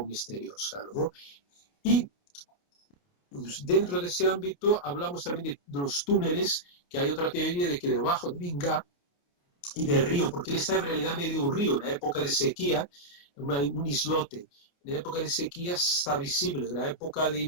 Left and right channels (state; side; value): late; right; 28 ms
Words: misteriosa, ¿no? Y dentro de ese ámbito hablamos también de los túneles, que hay otra teoría de que debajo de Inga y del río, porque él está en realidad medio un río, en la época de sequía, un islote, la época de sequía está visible. En la época de